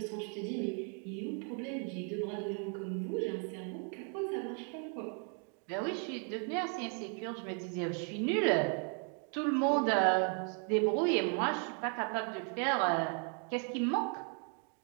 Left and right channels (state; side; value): quieter; left; 39.8 dB